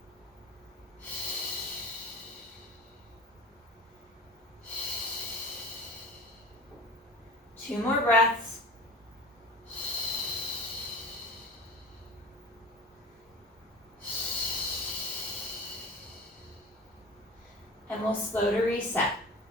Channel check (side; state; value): both; normal; correlation 0.36